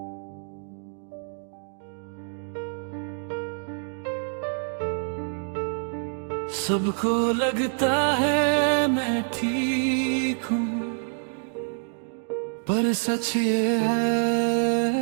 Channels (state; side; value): silent; left; 58 dB below the other